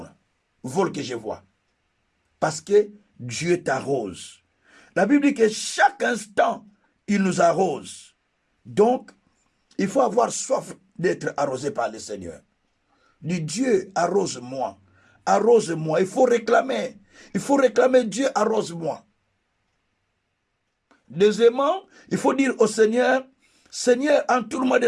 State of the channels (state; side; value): identical; both; correlation 1.00